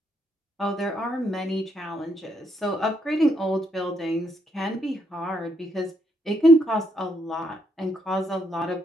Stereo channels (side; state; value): both; normal; correlation 0.75